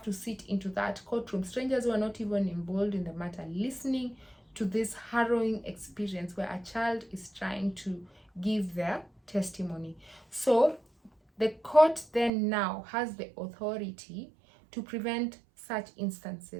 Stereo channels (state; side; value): drops out; left; at 12.3 s